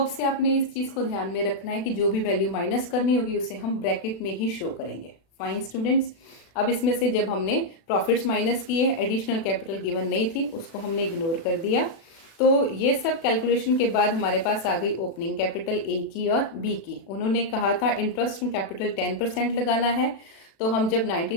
अब से आपने इस चीज़ को ध्यान में रखना है कि जो भी वैल्यू माइनस करनी होगी उसे हम ब्रैकेट में ही शो करेंगे। फाइन स्टूडेंट्स, अब इसमें से जब हमने प्रॉफिट्स माइनस किए, एडिशनल कैपिटल गिवन नहीं थी, उसको हमने इग्नोर कर दिया। तो ये सब कैलकुलेशन के बाद हमारे पास आ गई ओपनिंग कैपिटल ए की और बी की। उन्होंने कहा था इंटरेस्ट इन कैपिटल 10% लगाना है, तो हम जब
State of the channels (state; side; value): late; right; 36 ms